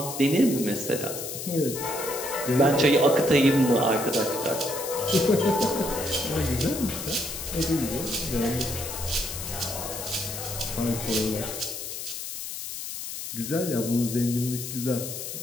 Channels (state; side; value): noise; left; hiss, 7 dB below the sound